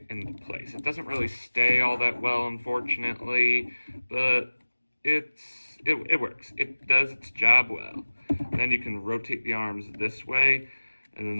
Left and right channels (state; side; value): inverted; both; correlation -1.00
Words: into place. It doesn't really stay all that well, unfortunately, but it works. It does its job well. And then you can rotate the arms this way, and